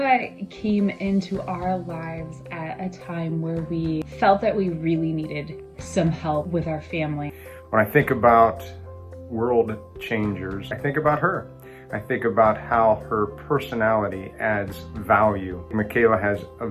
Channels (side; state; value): both; identical; correlation 1.00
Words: came into our lives at a time where we felt that we really needed some help with our family. When I think about world changers, I think about her. I think about how her personality adds value. Mikayla has a